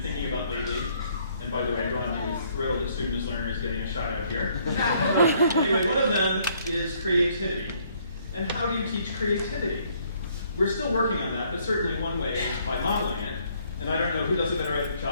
thinking about lately, and by the way, Ron is thrilled that student as learner is getting a shout out here. Anyway, one of them is creativity. And how do you teach creativity? We're still working on that, but certainly one way is by modeling it. And I don't know who does a better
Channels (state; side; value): inverted; both; correlation -0.66